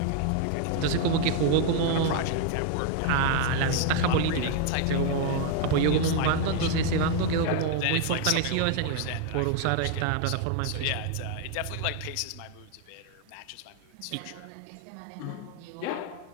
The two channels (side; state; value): both; different; correlation 0.00